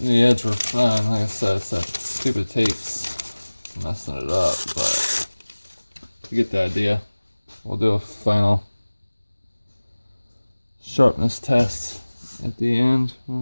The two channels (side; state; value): both; inverted; correlation -1.00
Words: The edge were fine. Like I said, it's that stupid tape's messing it up, but you get the idea. We'll do a final sharpness test at the end